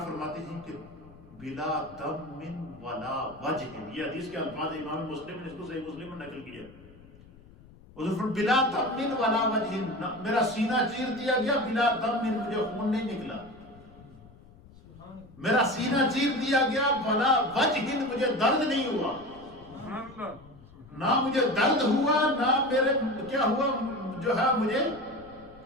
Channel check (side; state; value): left; noise; rumble, 23 dB below the sound